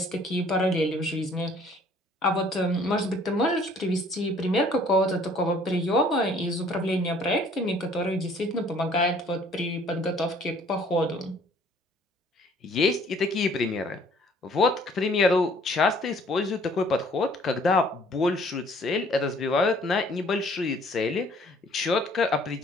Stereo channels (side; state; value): both; normal; correlation 0.57